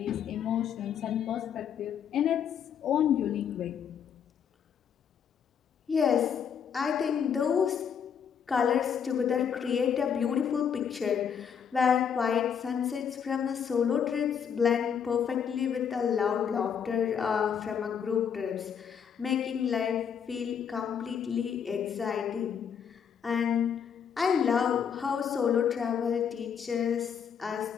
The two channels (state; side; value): quieter; right; 7.6 dB